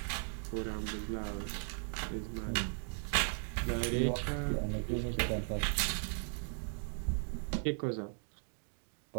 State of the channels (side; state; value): left; silent; 53 dB below the other